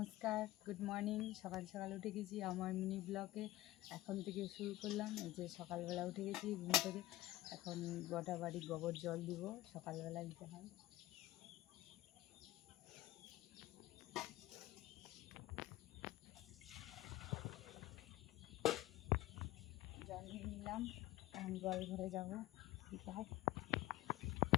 good morning. সকাল সকাল উঠে গেছি আমার মিনি ব্লগে। এখন থেকে শুরু করলাম। এই যে সকালবেলা উঠে গেছি ঘুম থেকে। এখন গোটা বাড়ি গোবর জল দিব, সকালবেলা দিতে হয়। জল নিয়ে নিলাম, এখন জল ঘরে যাবো দিতে হয়।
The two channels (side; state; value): right; quieter; 16.2 dB